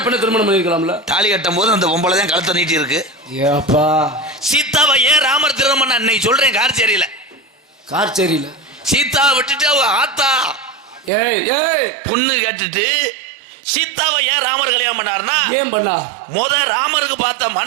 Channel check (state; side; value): drops out; left; at 11.1 s